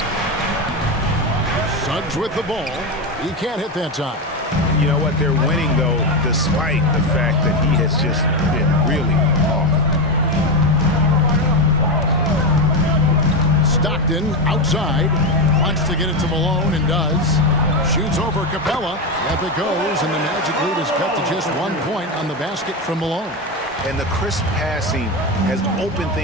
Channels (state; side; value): normal; both; correlation 0.13